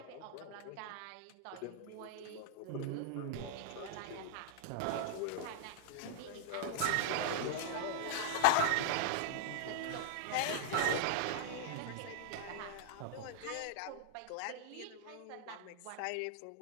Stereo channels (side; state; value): both; different; correlation -0.01